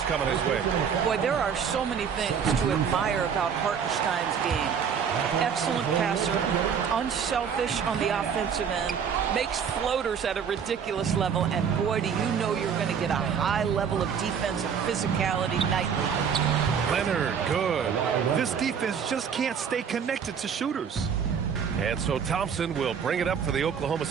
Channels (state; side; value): quieter; left; 7.2 dB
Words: coming his way. Boy, there are so many things to admire about Hartenstein's game. Excellent passer, unselfish on the offensive end, makes floaters at a ridiculous level, and boy, do you know you're going to get a high level of defensive physicality nightly. Leonard, good. This defense just can't stay connected to shooters. And so Thompson will bring it up for the Oklahoma